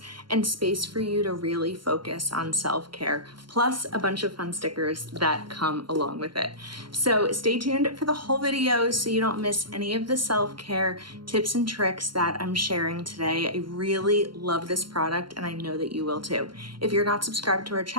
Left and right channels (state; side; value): late; left; 0.72 ms